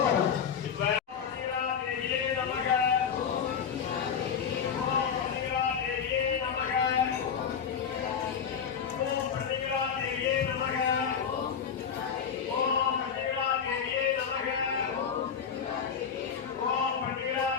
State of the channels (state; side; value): quieter; right; 7.2 dB